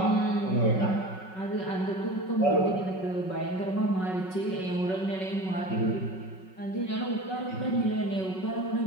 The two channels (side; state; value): right; late; 5.4 ms